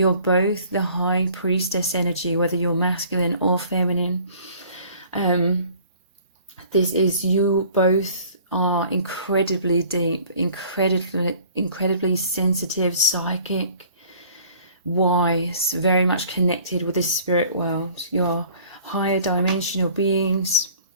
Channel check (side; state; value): both; inverted; correlation -0.52